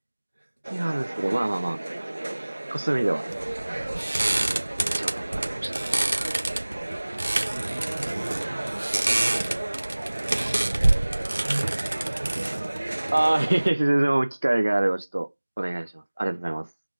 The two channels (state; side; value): inverted; both; correlation -1.00